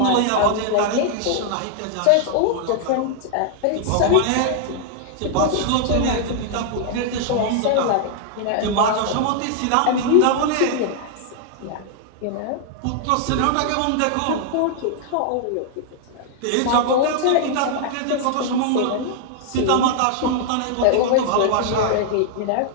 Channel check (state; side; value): different; both; correlation -0.01